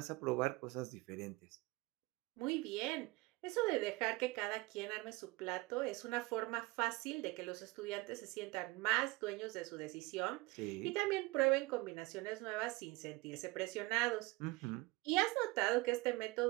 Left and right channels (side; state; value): left; quieter; 22.5 dB